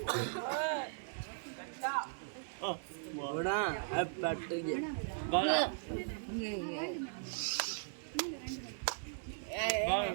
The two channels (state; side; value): silent; left; digital silence